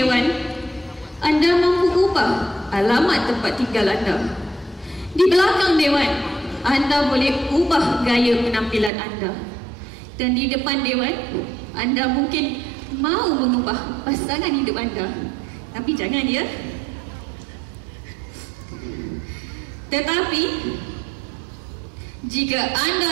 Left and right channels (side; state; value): left; drops out; at 8.9 s